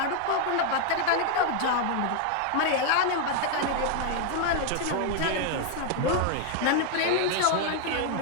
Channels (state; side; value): different; both; correlation 0.00